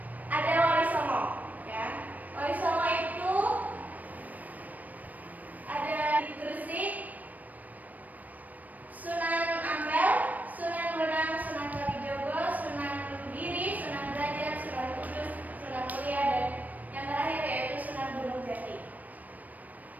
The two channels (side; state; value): left; late; 0.078 ms